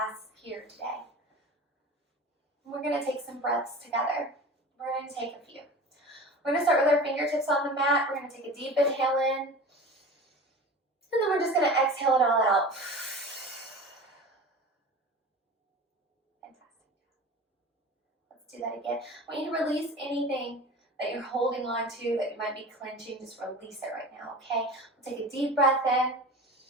here today. We're going to take some breaths together. We're going to take a few. We're going to start with our fingertips on the mat. We're going to take a deep inhale in. And then we're just going to exhale it all out. Fantastic. Let's do that again. I want you to release anything that you're holding on to, that you might be clenching. Just release it right now, okay? We'll take a deep breath in.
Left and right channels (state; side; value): normal; both; correlation 0.35